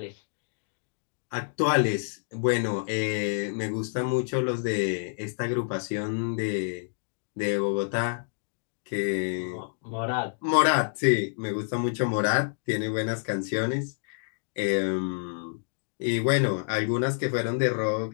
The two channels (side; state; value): right; silent; digital silence